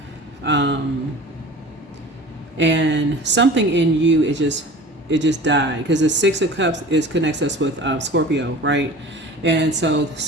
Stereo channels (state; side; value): normal; both; correlation 0.40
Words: And something in you is just, it just died, because the Six of Cups connects us with Scorpio, right? And so